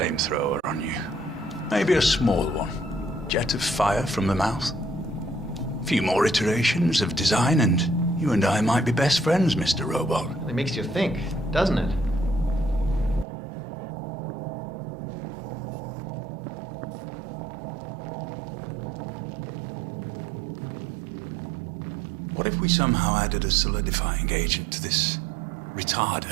on you? Maybe a small one. Jet of fire from the mouth. A few more iterations of design and you and I might be best friends, Mr. Robot. It makes you think, doesn't it? What if we somehow added a solidifying agent to this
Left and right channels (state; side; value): drops out; left; at 13.2 s